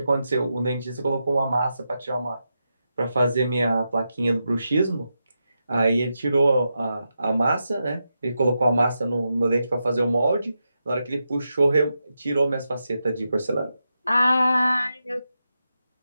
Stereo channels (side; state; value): both; inverted; correlation -0.87